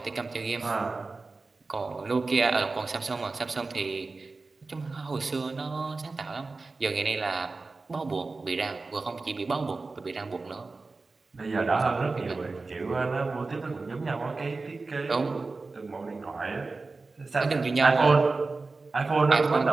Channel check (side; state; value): left; quieter; 3.8 dB